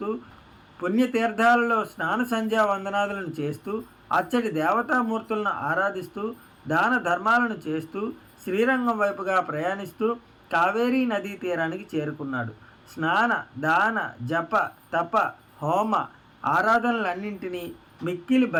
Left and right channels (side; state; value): both; identical; correlation 1.00